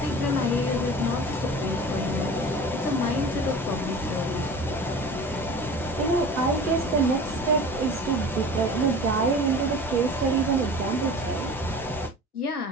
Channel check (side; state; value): both; normal; correlation 0.38